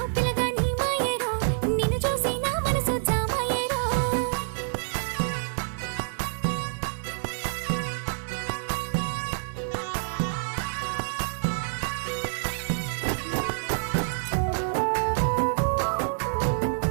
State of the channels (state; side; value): silent; left; digital silence